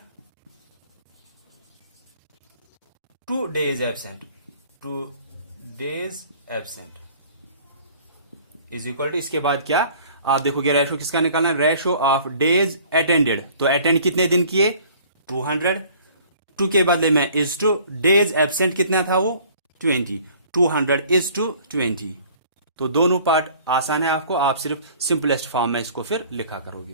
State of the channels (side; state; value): both; inverted; correlation -0.52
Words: to days absent, to days absent is equal to, इसके बाद क्या आप देखोगे रेशो किसका निकालना है, रेशो ऑफ डेज अटेंडेड, तो अटेंड कितने दिन किए 200, टू के बदले में इज टू, डेज एब्सेंट कितना था वो 20, 200 इज टू 20। तो दोनों पार्ट आसान है आपको, आप सिर्फ सिंपलेस्ट फॉर्म में इसको फिर लिखा